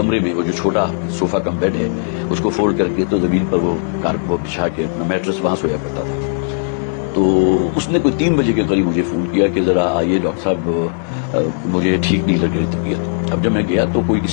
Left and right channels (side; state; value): right; silent; digital silence